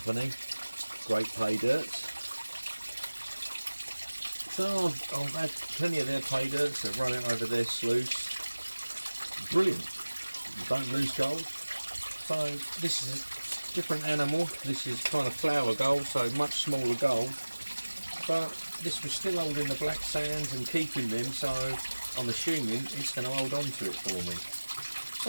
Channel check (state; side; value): inverted; both; correlation -1.00